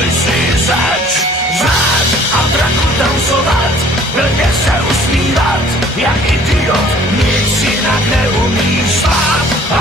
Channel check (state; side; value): normal; both; correlation 0.54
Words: jsi zač, řád a draku tancovat, blbě se usmívat, jak idiot, nic jinak neumíš spát,